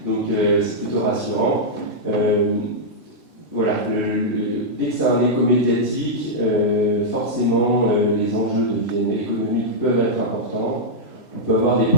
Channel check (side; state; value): both; normal; correlation -0.07